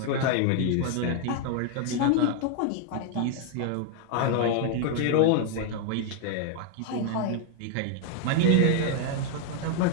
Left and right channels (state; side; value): different; both; correlation 0.00